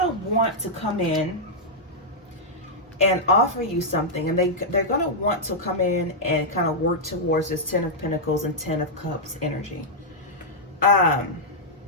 want to come in and offer you something, and they're gonna want to come in and kind of work towards this Ten of Pentacles and Ten of Cups energy.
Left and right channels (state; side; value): normal; both; correlation -0.07